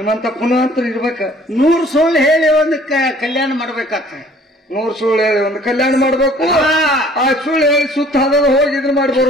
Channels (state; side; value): normal; both; correlation 0.54